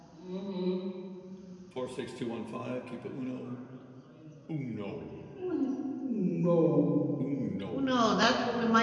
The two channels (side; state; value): both; identical; correlation 1.00